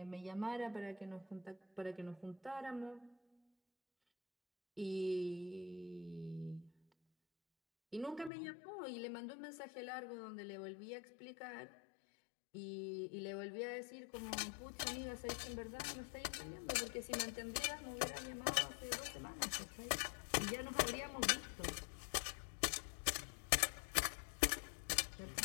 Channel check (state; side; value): drops out; right; at 8.3 s